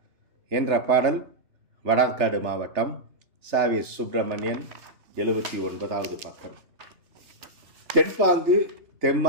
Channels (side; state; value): left; late; 3.3 ms